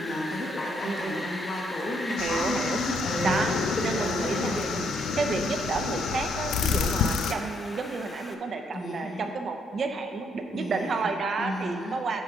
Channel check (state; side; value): normal; both; correlation 0.71